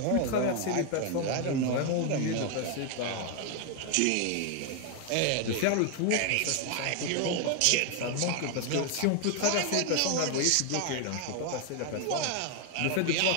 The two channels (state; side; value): different; both; correlation 0.01